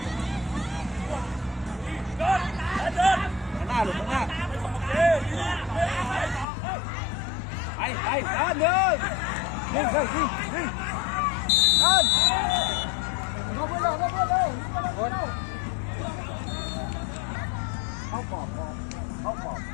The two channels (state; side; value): drops out; right; at 6.5 s